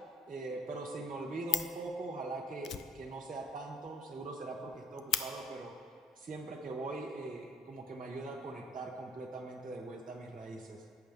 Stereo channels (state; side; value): normal; both; correlation 0.57